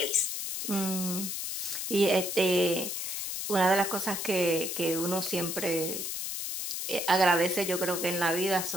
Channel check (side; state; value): left; noise; hiss, 3 dB below the sound